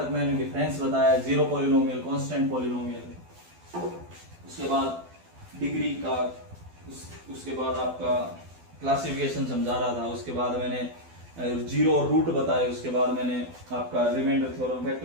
मैंने डिफरेंस बताया, जीरो पॉलिनोमियल, कांस्टेंट पॉलिनोमियल, उसके बाद डिग्री का, उसके बाद आपका क्लासिफिकेशन समझा रहा था, उसके बाद मैंने जीरो और रूट बताए, उसके बाद मैंने आपका रिमाइंडर थ्योरम,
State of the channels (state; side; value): late; left; 12 ms